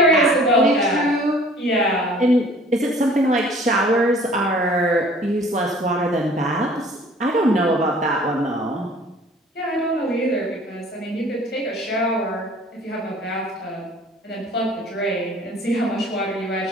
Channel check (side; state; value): both; normal; correlation 0.51